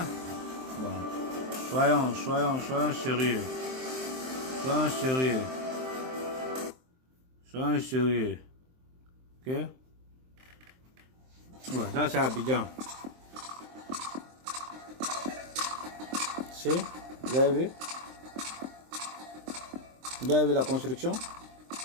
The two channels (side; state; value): left; late; 23 ms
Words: Bon. Soyons sérieux. Soyons sérieux. Soyons sérieux. Ok? Ouais, ça c'est Abidjan. Si? Vous avez vu? Vous avez vu la construction?